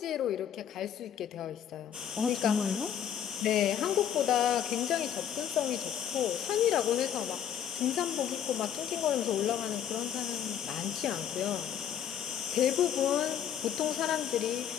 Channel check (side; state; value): right; quieter; 9.4 dB